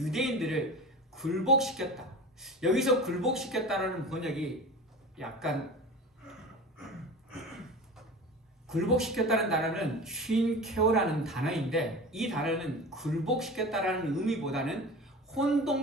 굴복시켰다. 여기서 굴복시켰다라는 번역이 약간, 굴복시켰다는 단어는 쉰케어라는 단어인데 이 단어는 굴복시켰다라는 의미보다는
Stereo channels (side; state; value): both; normal; correlation 0.33